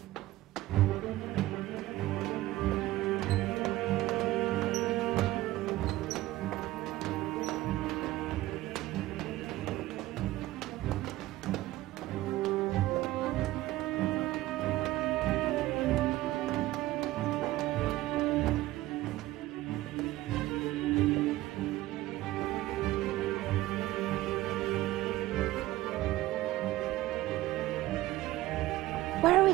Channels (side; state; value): left; quieter; 16.8 dB